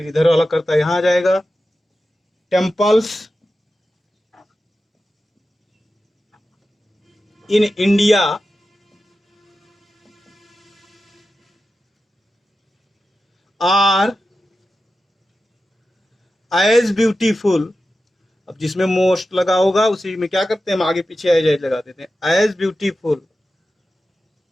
इधर वाला करता यहां आ जाएगा, temples in India are as beautiful. अब जिसमें मोस्ट लगा होगा उसी में क्या करते हैं, हम आगे पीछे एज लगा देते हैं, एज ब्यूटीफुल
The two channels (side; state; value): both; normal; correlation 0.92